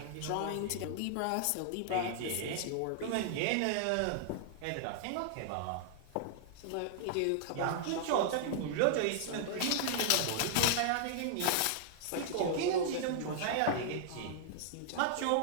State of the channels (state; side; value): different; both; correlation -0.01